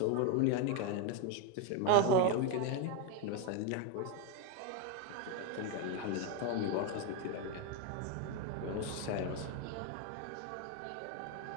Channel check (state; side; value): different; both; correlation 0.02